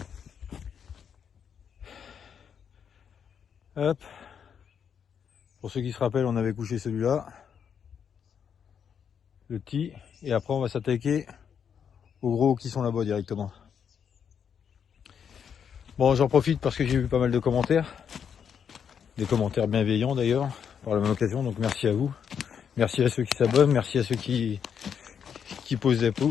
Hop. Pour ceux qui se rappellent, on avait couché celui-là, le petit, et après on va s'attaquer aux gros qui sont là-bas directement. Bon, j'en profite parce que j'ai eu pas mal de commentaires, des commentaires bienveillants d'ailleurs, par la même occasion, donc merci à vous. Merci à ceux qui s'abonnent, merci à ceux qui posent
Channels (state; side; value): quieter; right; 7.6 dB